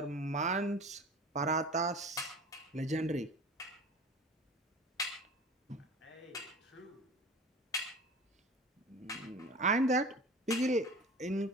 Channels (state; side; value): normal; both; correlation 0.38